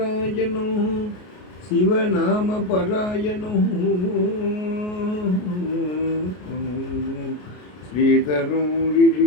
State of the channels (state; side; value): late; right; 33 ms